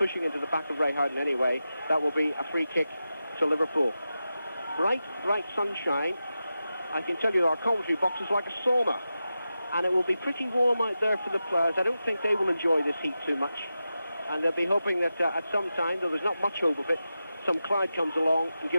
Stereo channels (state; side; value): inverted; both; correlation -0.91